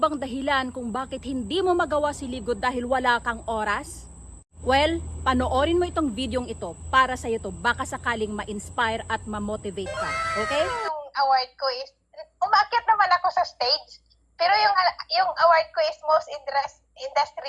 dahilan kung bakit hindi mo magawa si Live Good dahil wala kang oras? Well, panoorin mo itong videong ito para sa iyo to, baka sakaling ma-inspire at ma-motivate ka. Okay? Yung award ko is, umakyat naman ako sa stage, pero yung award ko is most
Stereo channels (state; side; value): identical; both; correlation 1.00